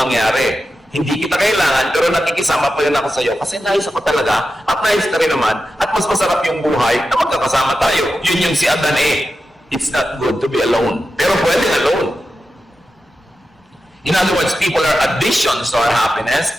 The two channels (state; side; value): normal; both; correlation 0.91